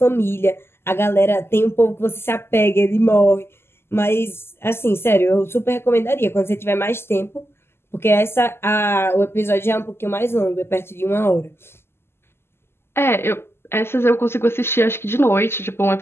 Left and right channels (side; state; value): right; late; 0.12 ms